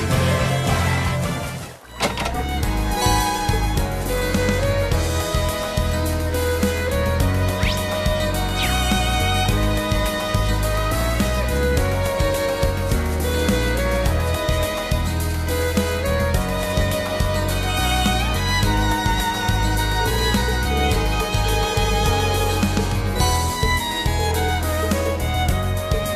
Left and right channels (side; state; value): both; identical; correlation 1.00